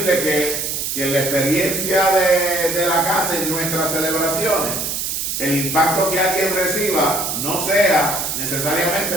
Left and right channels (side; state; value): right; noise; hiss, 2 dB below the sound